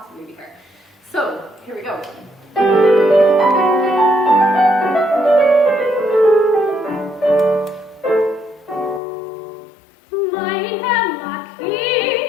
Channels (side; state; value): right; drops out; at 9.0 s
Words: be her. So, here we go.